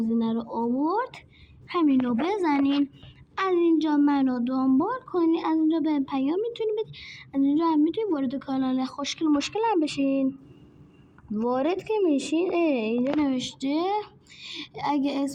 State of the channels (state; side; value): identical; both; correlation 1.00